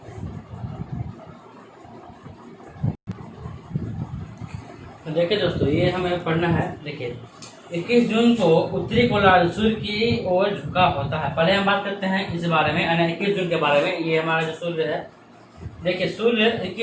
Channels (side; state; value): both; identical; correlation 1.00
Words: तो देखिए दोस्तों ये हमें पढ़ना है। देखिए 21 जून को उत्तरी गोलार्ध सूर्य की ओर झुका होता है। पहले हम बात करते हैं इस बारे में, यानी 21 जून के बारे में। ये हमारा जो सूर्य है, देखिए सूर्य